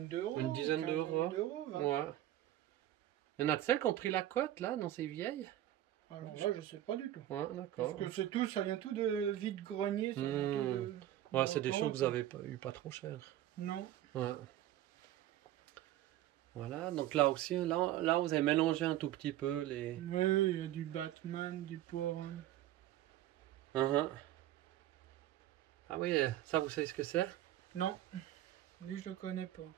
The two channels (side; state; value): left; quieter; 13.2 dB